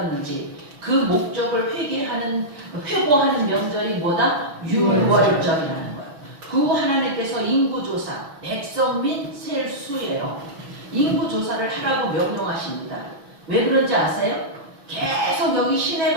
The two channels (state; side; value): late; left; 6.1 ms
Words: 그 목적을 회고하는 명절이 뭐다? 6월절이라는 거예요. 그 후 하나님께서 인구조사, 백성 및 셀 수예요. 인구조사를 하라고 명령하십니다. 왜 그런지 아세요? 계속 여기 신의